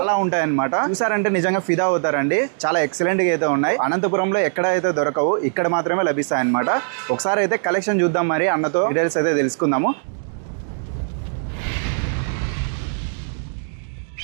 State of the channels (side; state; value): left; silent; digital silence